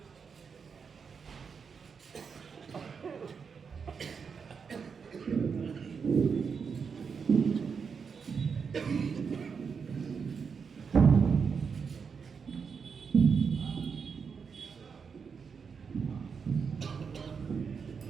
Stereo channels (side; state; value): left; quieter; 6.0 dB